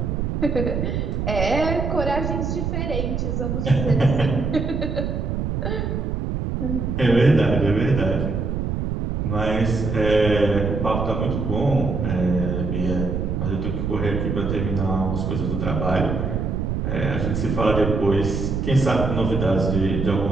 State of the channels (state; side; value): noise; right; rumble, 1 dB below the sound